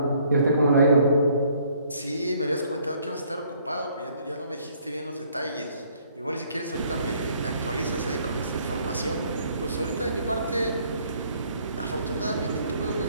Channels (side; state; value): both; inverted; correlation -0.63